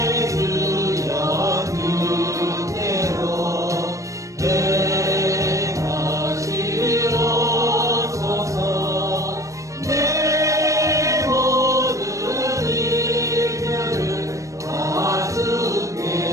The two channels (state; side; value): late; left; 0.16 ms